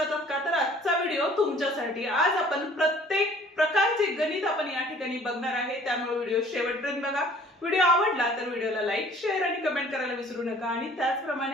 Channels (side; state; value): both; normal; correlation 0.53